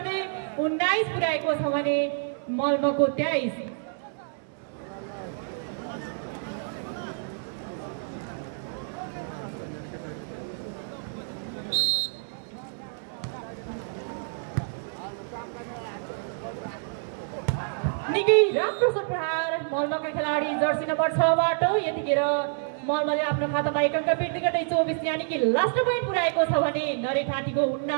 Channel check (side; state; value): left; silent; 59 dB below the other